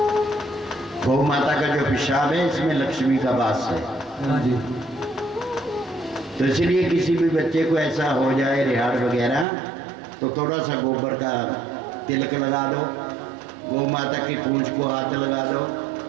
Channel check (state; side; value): drops out; left; at 9.5 s